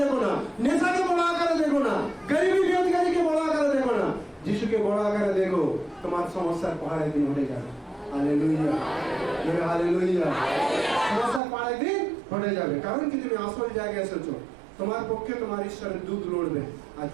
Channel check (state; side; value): drops out; left; at 11.4 s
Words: দেখো না, নেশাকে বড় আকারে দেখো না, গরিবী বেরোজগারিকে বড় আকারে দেখো না, যিশুকে বড় আকারে দেখো, তোমার সমস্যার পাহাড়ে দিন হয়ে যাবে। Hallelujah, hallelujah. সমস্যার পাহাড়ে দিন হয়ে যাবে, কারণ কি তুমি আসল জায়গায় এসেছো। তোমার পক্ষে তোমার ঈশ্বরের দূত লড়বে, আর